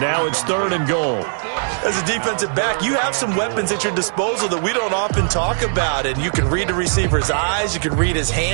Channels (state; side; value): silent; left; digital silence